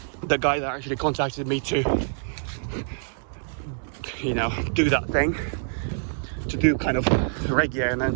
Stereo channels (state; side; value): silent; left; digital silence